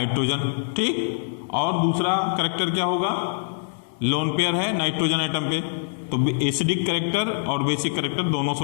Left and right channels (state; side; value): silent; right; digital silence